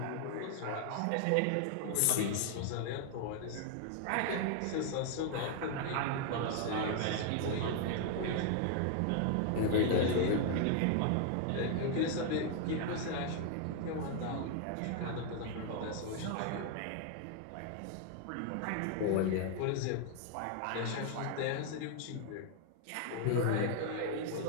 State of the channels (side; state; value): both; different; correlation 0.00